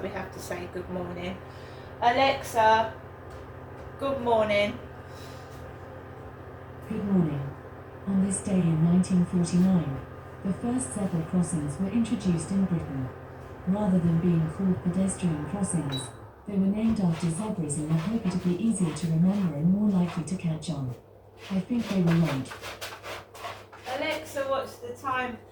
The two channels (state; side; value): identical; both; correlation 1.00